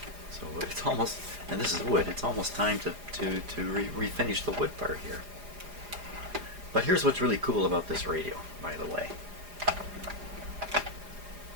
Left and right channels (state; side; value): late; left; 4.9 ms